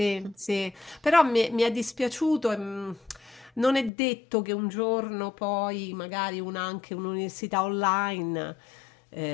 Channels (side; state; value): right; drops out; at 3.9 s